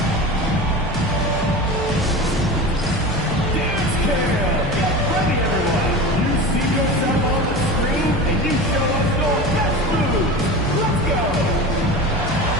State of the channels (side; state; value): both; normal; correlation 0.30